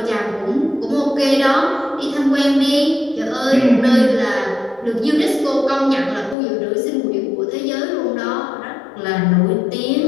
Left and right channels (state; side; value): drops out; right; at 6.4 s